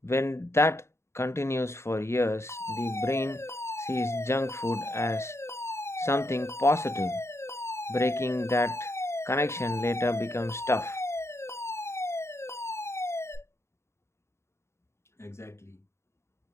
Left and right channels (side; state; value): right; late; 0.13 ms